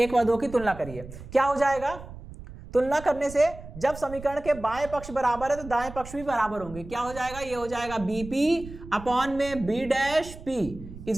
और 2 की तुलना करिए, क्या हो जाएगा, तुलना करने से जब समीकरण के बाएं पक्ष बराबर है तो दाएं पक्ष भी बराबर होंगे। क्या हो जाएगा, ये हो जाएगा बीपी अपॉन में B dash P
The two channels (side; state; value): right; noise; rumble, 14 dB below the sound